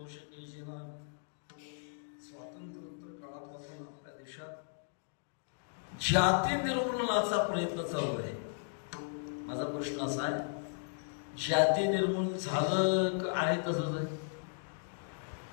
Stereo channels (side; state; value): right; silent; digital silence